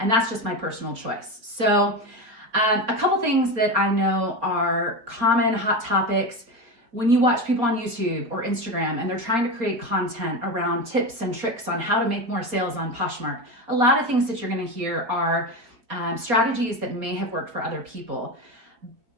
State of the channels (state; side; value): late; left; 4.4 ms